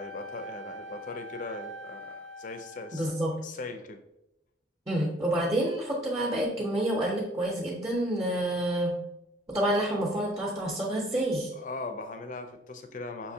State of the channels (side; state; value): both; normal; correlation 0.55